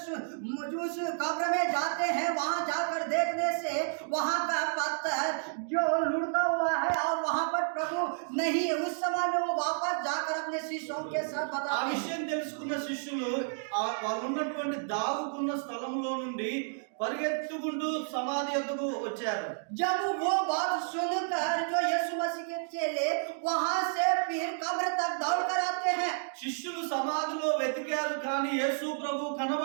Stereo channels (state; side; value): silent; left; digital silence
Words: कब्र में जाते हैं। वहां जाकर देखने से वहां का पत्थर जो लुढ़का हुआ है और वहां पर प्रभु नहीं, उस समय में वो वापस जाकर अपने शिष्यों के साथ ఆ बताते हैं। విషయం తెలుసుకున్న శిష్యులు వాళ్ళు ఉన్నటువంటి దాగుకున్న స్థలంలో నుండి పరిగెత్తుకుంటూ సమాధి యొద్దకు వచ్చారు. जब वो बात सुनकर जो यीशु मसीह के चेले वहां से फिर कब्र तक दौड़ कर आते हैं। శిష్యులు సమాధిలో వెతికారు, కానీ యేసు ప్రభు